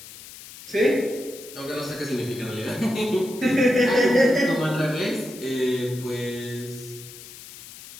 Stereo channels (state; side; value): noise; left; hiss, 16 dB below the sound